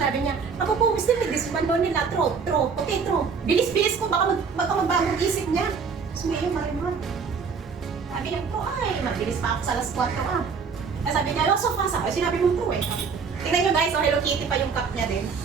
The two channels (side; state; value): left; quieter; 5.6 dB